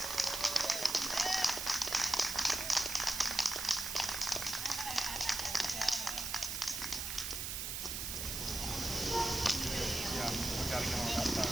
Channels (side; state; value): right; noise; hiss, 3 dB below the sound